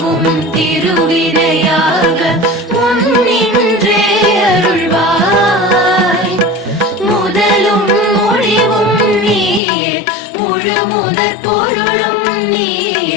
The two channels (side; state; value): right; drops out; at 9.6 s